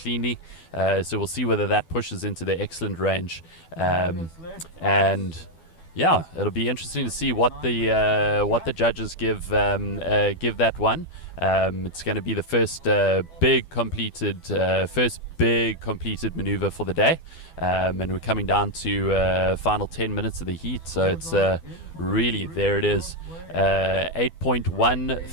So we'll see whether that pushes into the excellent range. And yeah, it'll be interesting to see what the judges give that one. It's going to be the first big completed, first big completed maneuver for the day, and we're coming down to final 10 minutes of the heat, so it's really, there it is,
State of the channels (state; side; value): late; right; 12 ms